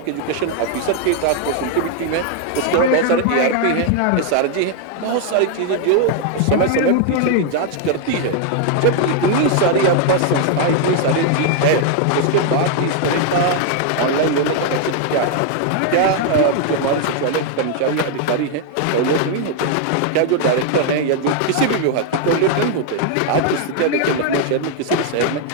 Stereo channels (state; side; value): different; both; correlation 0.00